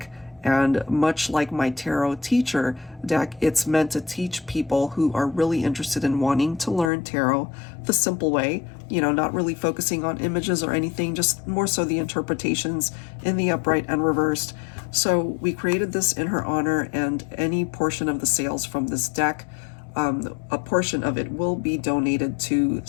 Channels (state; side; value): drops out; right; at 6.9 s